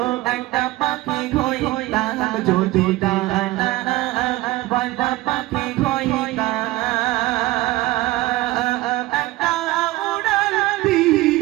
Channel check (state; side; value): quieter; left; 18.2 dB